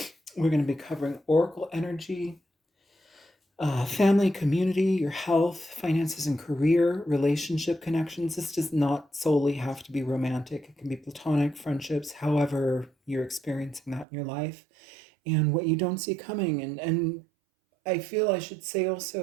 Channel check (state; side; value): drops out; left; at 14.1 s